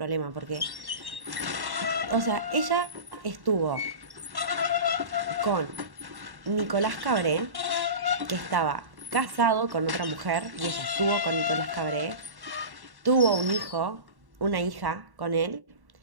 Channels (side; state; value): left; late; 1.1 ms